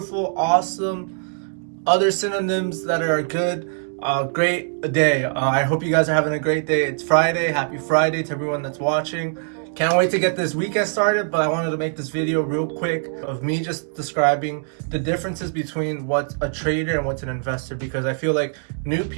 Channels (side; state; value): left; silent; digital silence